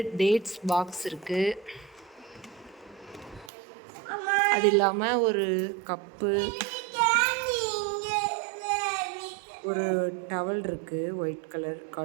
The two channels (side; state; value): left; drops out; at 3.5 s